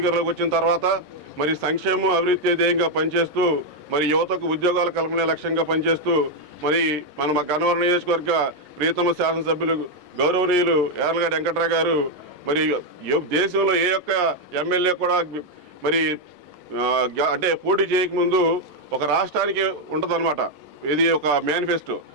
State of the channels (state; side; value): late; left; 11 ms